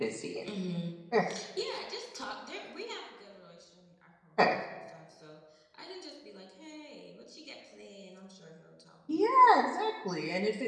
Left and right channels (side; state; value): both; identical; correlation 1.00